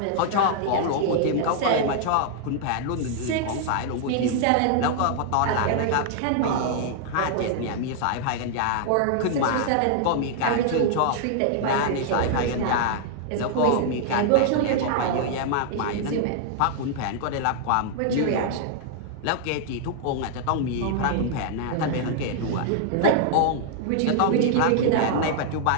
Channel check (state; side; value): different; both; correlation -0.01